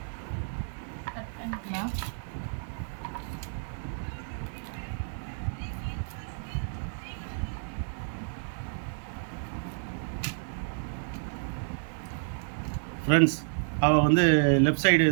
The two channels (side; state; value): left; silent; digital silence